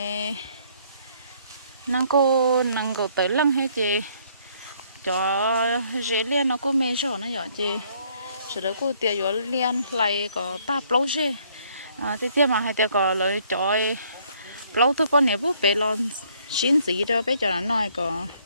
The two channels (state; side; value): inverted; both; correlation -0.64